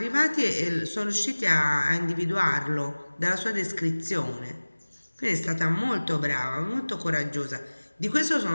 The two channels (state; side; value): inverted; both; correlation -1.00